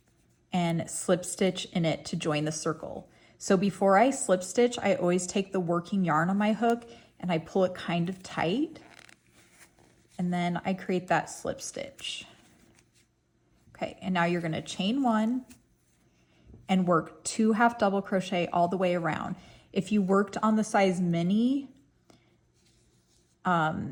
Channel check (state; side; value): identical; both; correlation 1.00